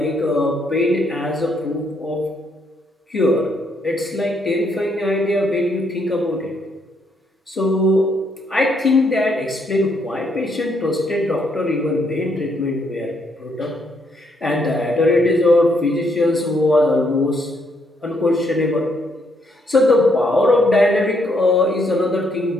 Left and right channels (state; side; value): normal; both; correlation 0.73